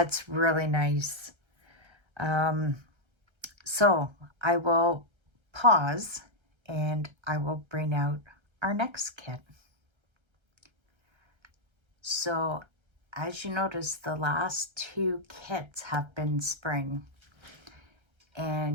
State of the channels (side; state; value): left; late; 1.3 ms